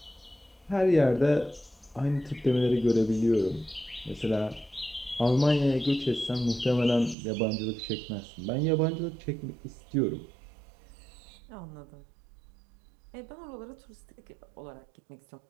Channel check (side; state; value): left; drops out; at 7.2 s